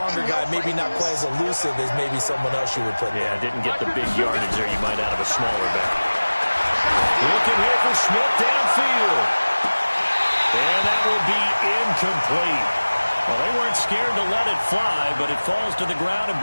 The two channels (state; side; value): inverted; both; correlation -1.00